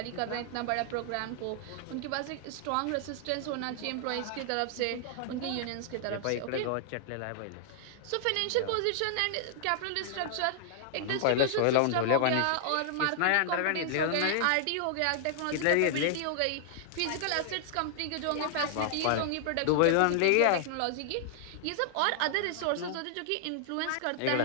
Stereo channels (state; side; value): different; both; correlation -0.01